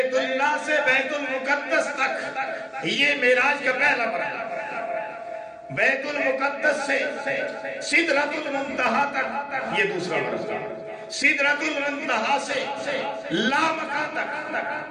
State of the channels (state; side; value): identical; both; correlation 1.00